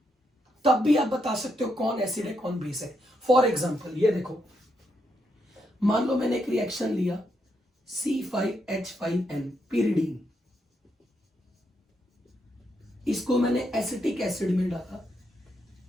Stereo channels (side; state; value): both; normal; correlation 0.80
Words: तब भी आप बता सकते हो कौन एसिड है कौन बेस है। फॉर एग्जांपल ये देखो, मान लो मैंने एक रिएक्शन लिया C5H5N pyridine, इसको मैंने एसिटिक एसिड में डाला,